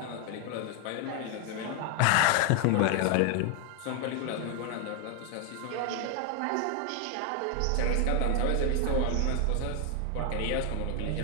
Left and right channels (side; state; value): both; different; correlation 0.01